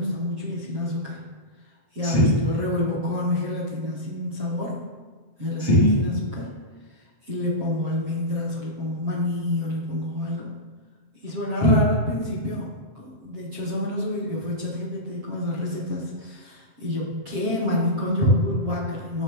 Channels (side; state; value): left; late; 7.4 ms